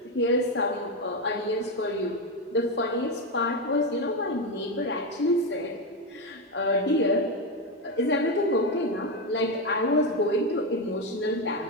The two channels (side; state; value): both; normal; correlation 0.10